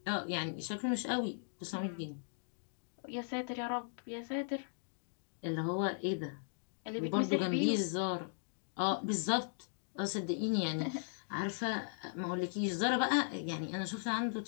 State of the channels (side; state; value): right; silent; digital silence